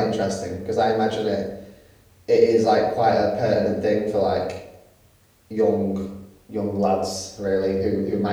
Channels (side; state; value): both; identical; correlation 1.00